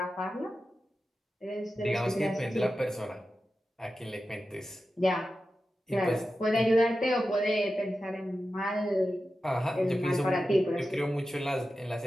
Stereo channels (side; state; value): both; normal; correlation 0.92